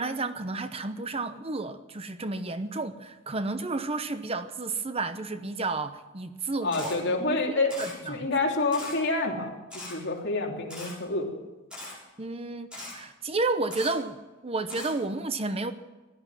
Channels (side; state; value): both; normal; correlation 0.02